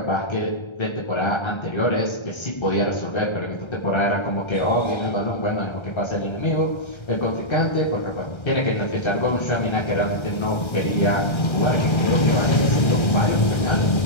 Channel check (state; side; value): late; right; 1.3 ms